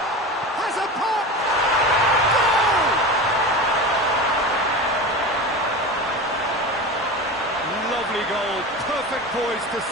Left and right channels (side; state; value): both; normal; correlation 0.28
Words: Has a pop! Goal! Lovely goal. Perfect poise to